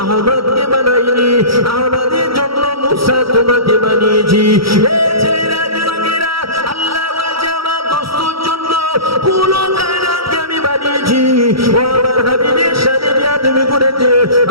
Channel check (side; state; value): left; late; 0.75 ms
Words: আহমদকে বানাইনি, আহমদের জন্য মুসা তোমাকে বানিয়েছি। এই ছেলেরা, যুবকেরা, আল্লাহ বলছে আমার দোস্তর জন্য পুরো কায়নাতকে আমি বানিয়েছি। ও আমার হাবিবের সাথে বেয়াদবি করেছে,